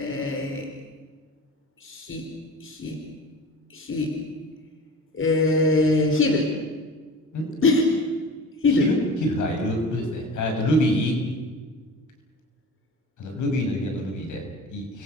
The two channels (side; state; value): both; normal; correlation 0.37